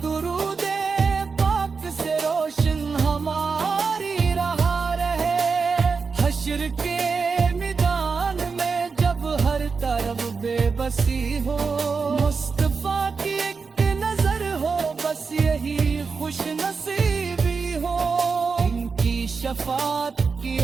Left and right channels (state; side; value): quieter; left; 5.0 dB